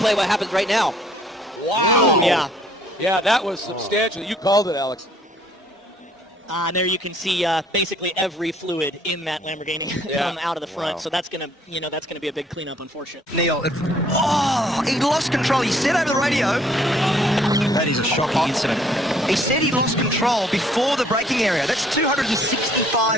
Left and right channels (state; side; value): normal; both; correlation 0.62